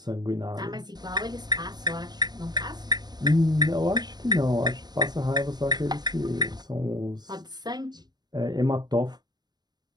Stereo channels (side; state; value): left; late; 0.20 ms